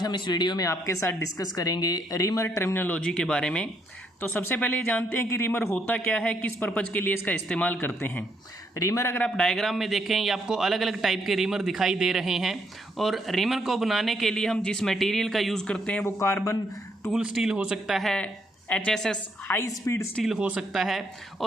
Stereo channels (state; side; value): normal; both; correlation 0.74